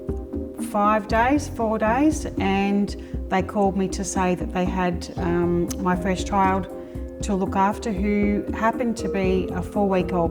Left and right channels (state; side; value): identical; both; correlation 1.00